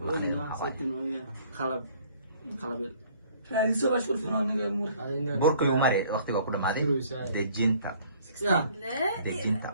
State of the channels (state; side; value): inverted; both; correlation -0.57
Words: Setting ويا خلب خلب. هذه سوى شغل فنان مور burka igu mari waqtiga ku dhamaaday. dejinta. يا. لا